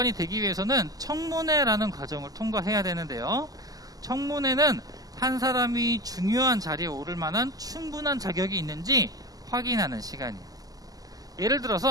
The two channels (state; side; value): late; left; 0.17 ms